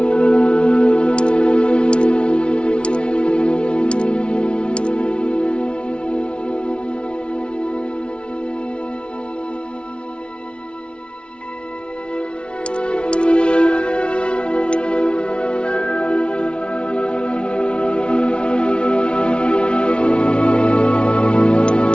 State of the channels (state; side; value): late; right; 0.058 ms